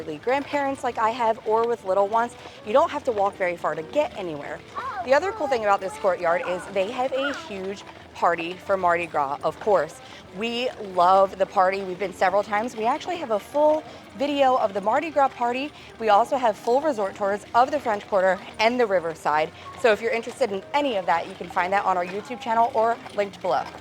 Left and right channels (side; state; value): both; identical; correlation 1.00